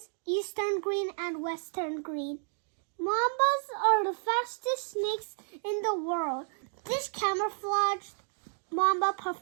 Eastern green, and Western green. Mambas are the fastest snakes in the world. This camouflaged mamba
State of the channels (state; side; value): silent; left; 57 dB below the other